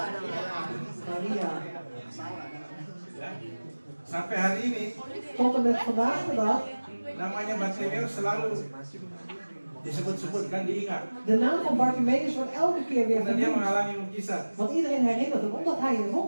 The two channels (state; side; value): inverted; both; correlation -1.00